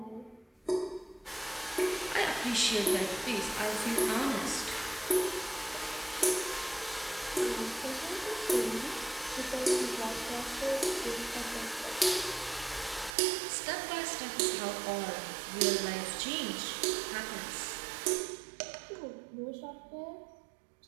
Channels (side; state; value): left; drops out; at 13.1 s